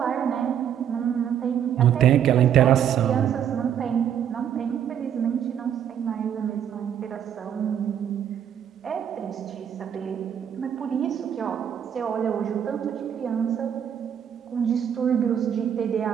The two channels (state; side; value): quieter; left; 9.2 dB